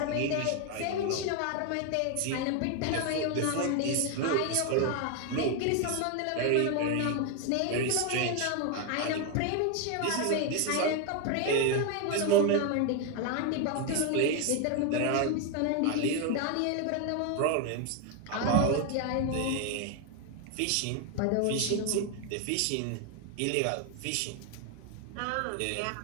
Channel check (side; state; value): both; different; correlation 0.01